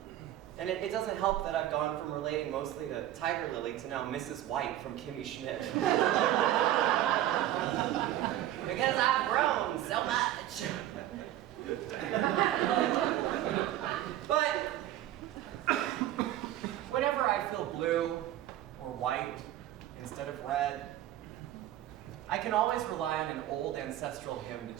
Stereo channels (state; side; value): quieter; left; 13.1 dB